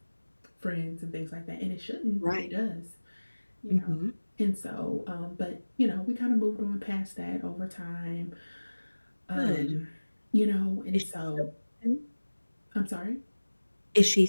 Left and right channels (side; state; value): both; inverted; correlation -1.00